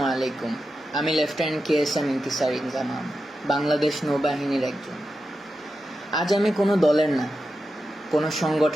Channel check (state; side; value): normal; both; correlation 0.90